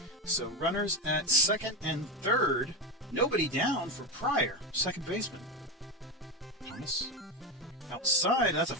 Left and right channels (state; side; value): normal; both; correlation 0.15